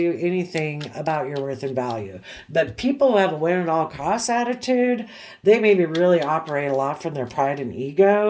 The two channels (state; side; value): identical; both; correlation 1.00